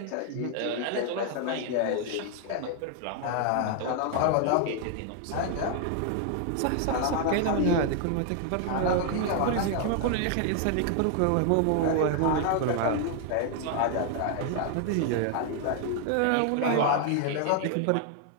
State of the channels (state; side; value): different; both; correlation 0.00